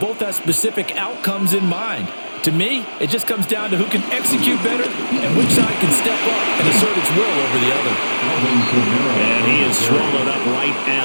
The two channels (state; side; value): inverted; both; correlation -1.00